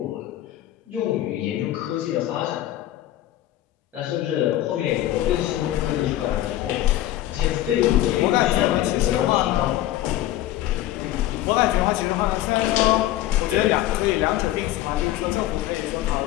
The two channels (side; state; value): right; quieter; 14.1 dB